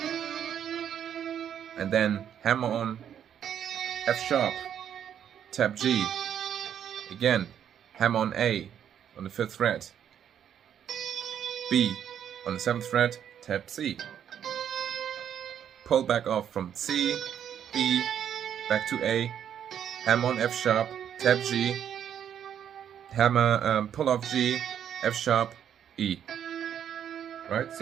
and then hammer on F sharp, tap G, again, hammer on A on the 5th fret, B on the 7th fret, tap C, pull back off from C, B, back to A, hammer on F sharp, tap G, hammer, pull off G, F sharp, E, right?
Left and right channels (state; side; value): quieter; left; 9.2 dB